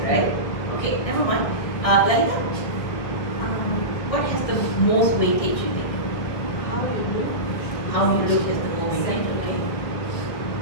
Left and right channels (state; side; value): late; right; 1.6 ms